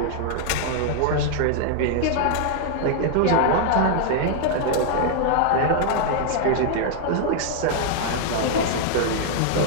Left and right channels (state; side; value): different; both; correlation 0.00